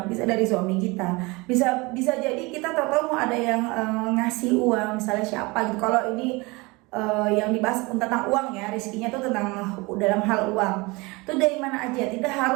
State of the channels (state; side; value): quieter; left; 24.9 dB